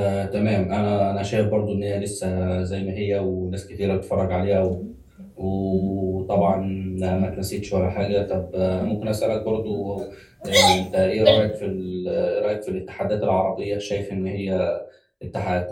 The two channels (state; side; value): identical; both; correlation 1.00